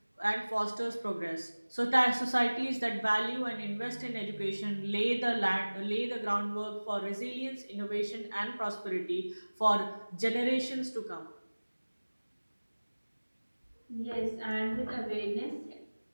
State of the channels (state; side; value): inverted; both; correlation -1.00